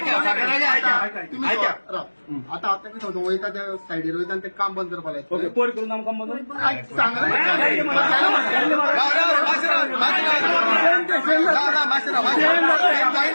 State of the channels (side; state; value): both; inverted; correlation -1.00